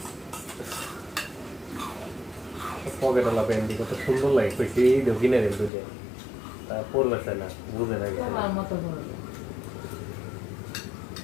পকেটওয়ালা প্যান্টি কত সুন্দর লাগে, কইছি এই দেখি না রে বুঝে, তা পরবে না, বুঝে না কিছু।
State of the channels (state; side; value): drops out; right; at 5.7 s